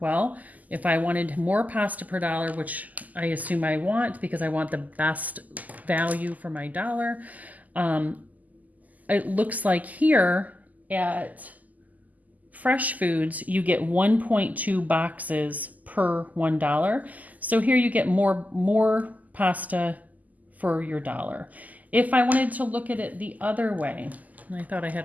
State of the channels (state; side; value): late; left; 0.079 ms